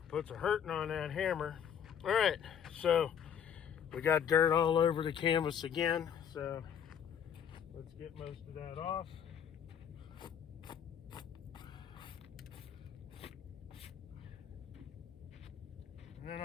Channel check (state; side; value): quieter; right; 8.4 dB